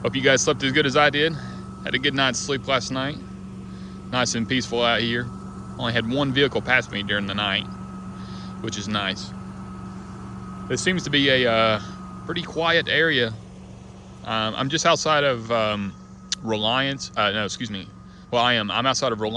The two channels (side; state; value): both; identical; correlation 1.00